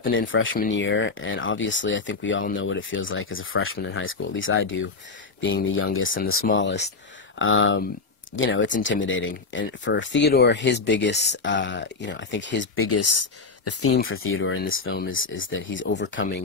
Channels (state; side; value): quieter; right; 4.3 dB